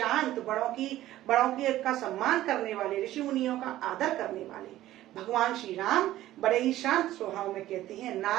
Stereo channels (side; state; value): left; quieter; 14.5 dB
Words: बड़ों की का सम्मान करने वाले, ऋषि मुनियों का आदर करने वाले भगवान श्री राम बड़े ही शांत स्वभाव में कहते हैं